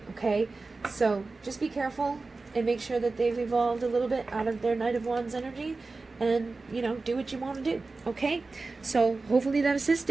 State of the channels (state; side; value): quieter; left; 3.7 dB